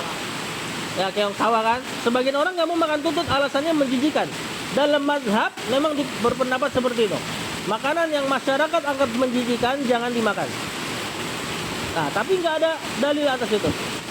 Ya, keong sawah kan. Sebagian orang nggak mau makan tutut, alasannya menjijikan. Dalam mazhab memang berpendapat seperti itu. Makanan yang masyarakat anggap menjijikan jangan dimakan. Nah, tapi nggak ada dalil atas itu.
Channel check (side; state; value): both; identical; correlation 1.00